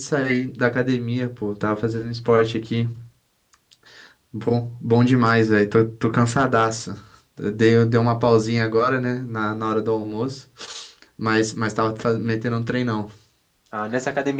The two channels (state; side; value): identical; both; correlation 1.00